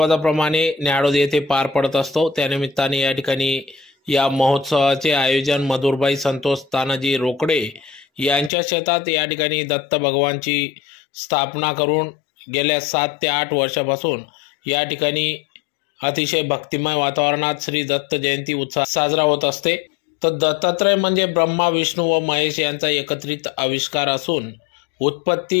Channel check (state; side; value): drops out; right; at 8.5 s